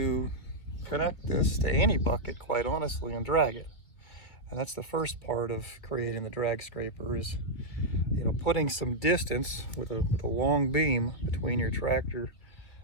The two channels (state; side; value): late; right; 2.1 ms